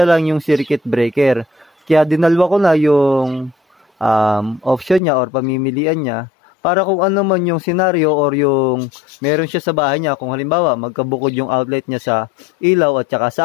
lang yung circuit breaker. Kaya dinalwa ko na yung option niya or pamimilian niya, para kung ano man yung scenario or yung meron siya sa bahay niya, kung halimbawa magkabukod yung outlet niya sa ilaw at saka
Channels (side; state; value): right; drops out; at 5.0 s